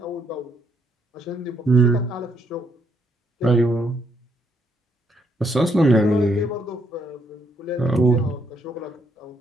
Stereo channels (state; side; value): normal; both; correlation 0.74